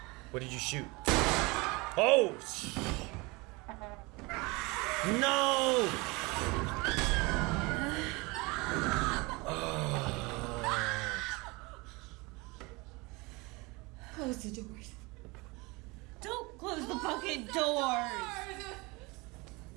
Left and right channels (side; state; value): left; quieter; 25.5 dB